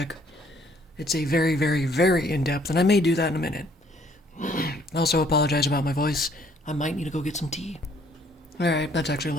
It's a very, very, very in-depth, and I may do that in a minute. I also apologize about my voice. I might need to go get some tea. Alright, that's actually a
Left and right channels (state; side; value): normal; both; correlation 0.62